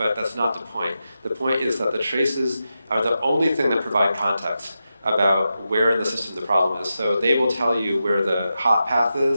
that's not the point. The point is that the traces are the only thing that provide context about where in the system the problem is. So they will tell you where the hot path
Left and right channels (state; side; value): inverted; both; correlation -0.89